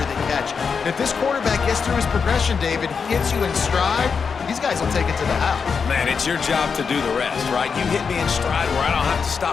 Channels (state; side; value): quieter; right; 5.8 dB